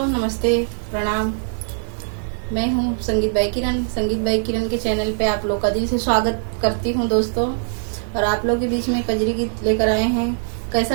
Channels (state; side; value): silent; left; digital silence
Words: नमस्ते, प्रणाम। मैं हूँ संगीत बाई किरण। संगीत बाई किरण के चैनल पे आप लोग का दिल से स्वागत करती हूँ दोस्तों। और आप लोग के बीच में कजरी गीत लेकर आए हैं। कैसा